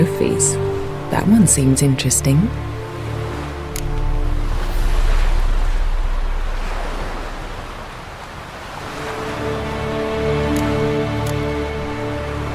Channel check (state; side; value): identical; both; correlation 1.00